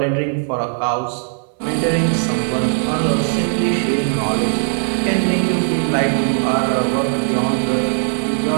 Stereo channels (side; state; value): left; silent; 67 dB below the other